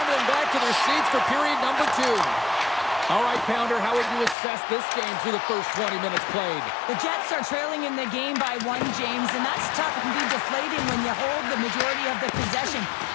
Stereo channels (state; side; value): drops out; right; at 4.4 s